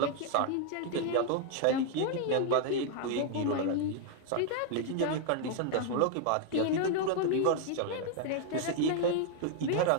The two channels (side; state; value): both; different; correlation 0.00